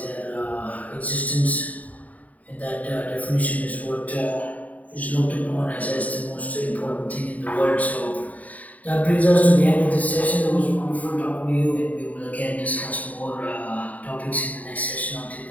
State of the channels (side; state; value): right; late; 0.072 ms